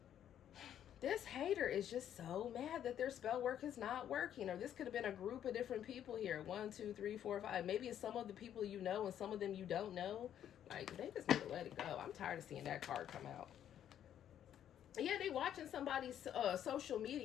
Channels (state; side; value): quieter; right; 10.2 dB